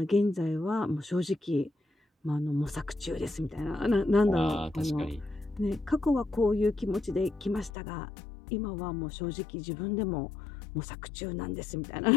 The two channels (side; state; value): right; drops out; at 7.7 s